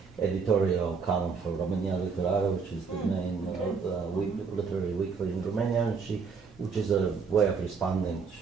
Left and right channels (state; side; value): quieter; left; 5.3 dB